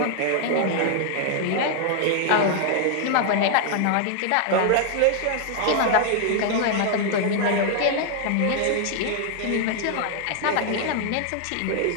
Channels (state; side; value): different; both; correlation 0.00